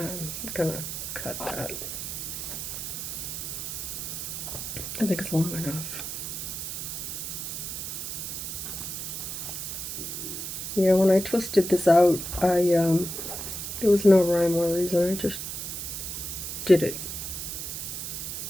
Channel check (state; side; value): noise; right; hiss, 5 dB below the sound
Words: gonna cut that. I think it's long enough. Yeah, when I twisted this out, there was no rhyme or reason. I just did it.